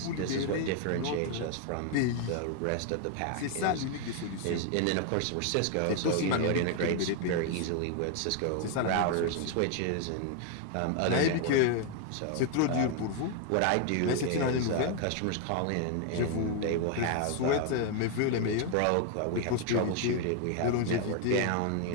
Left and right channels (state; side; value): different; both; correlation 0.01